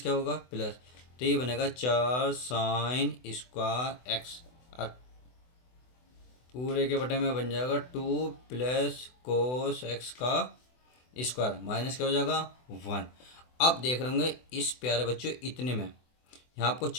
होगा प्लस, तो ये बनेगा 4 sin स्क्वायर एक्स, और पूरे के बटे में बन जाएगा 2 प्लस कोस एक्स का स्क्वायर माइनस क्या हो जाएगा 1। अब देख रहे होंगे इस प्यारे बच्चों इतने में यहाँ आपको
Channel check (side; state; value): right; late; 24 ms